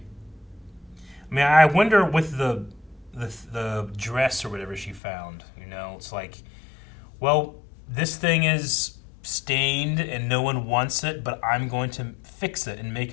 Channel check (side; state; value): right; drops out; at 5.0 s